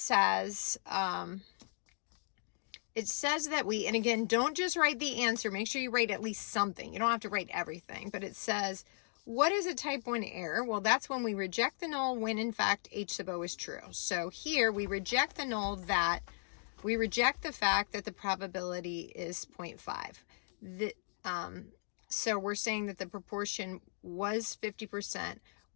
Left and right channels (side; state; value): right; silent; digital silence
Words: that we, and again, don't just write the answer, make sure you write at least something. You don't have to write everything, but it says, what is a type 1 error? Well, that's when we reject the null when in fact H sub O is true. So here we reject the null that, we reject the fact that the probability is 0.5. So we're saying that the proportion was 50%